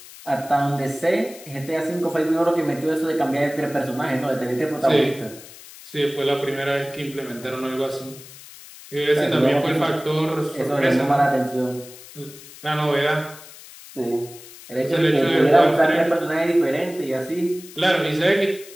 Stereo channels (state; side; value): noise; left; hiss, 18 dB below the sound